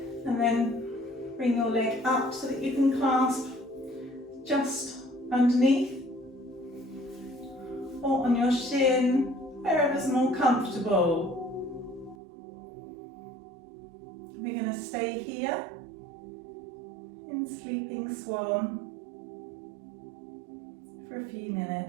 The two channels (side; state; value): left; drops out; at 12.2 s